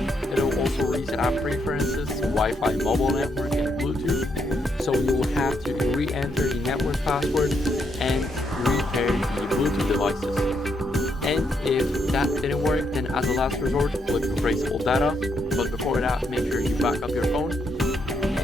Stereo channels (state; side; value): normal; both; correlation 0.77